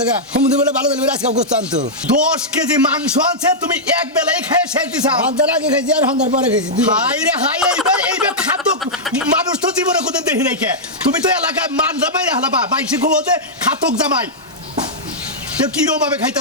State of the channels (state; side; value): normal; both; correlation -0.08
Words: গা সমুদ্র বেলা ভালো দিলে আজকে গোস্ত আনতো 10 কেজি মাংস আছে তুমি এক বেলায় খেয়ে শেষ দিছা ঘন্টার আগে খাইছি আর ঘন্টার পরে খাইছি হাই রে হাই এইবার খাদ্য মানুষ তো জীবনে কোনদিন দেখি নাই কে তুমি তো এলাকায় মান জামাই হালাবা বাইশে ঘুমোতে খাতক জামাই তো কিরম ভাবে